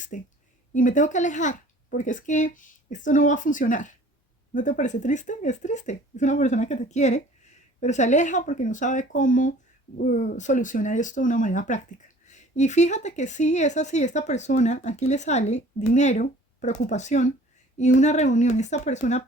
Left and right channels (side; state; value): both; normal; correlation 0.50